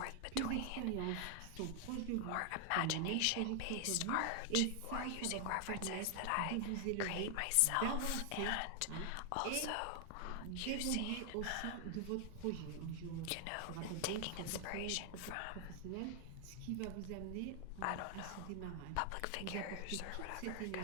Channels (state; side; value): different; both; correlation 0.00